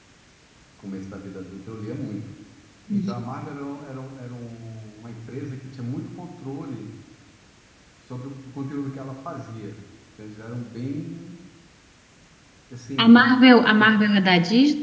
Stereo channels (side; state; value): both; identical; correlation 1.00